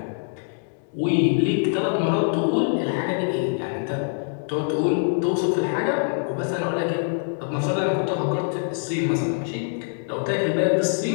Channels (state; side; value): silent; right; digital silence